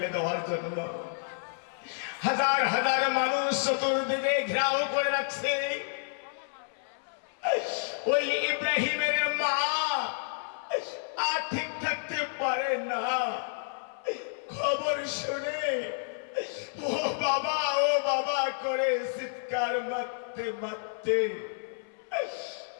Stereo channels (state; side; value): silent; right; 58 dB below the other